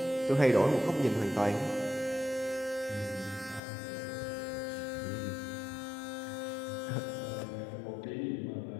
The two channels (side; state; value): right; drops out; at 3.6 s